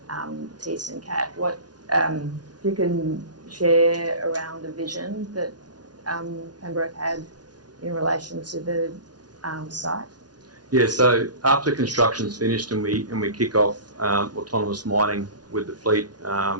Thiess and Cat, what if you can share around the vision that Pembroke had in relation to the site? Yeah, so after construction's finished and we kick off autonomous mining with the fleet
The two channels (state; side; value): late; left; 0.69 ms